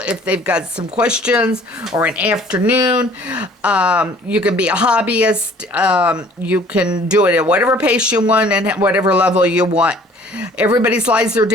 they've got some questions, or an afternoon. You can be a hobbyist. You can do it at whatever pace you want and at whatever level you want. Everybody's lives are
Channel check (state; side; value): normal; both; correlation 0.53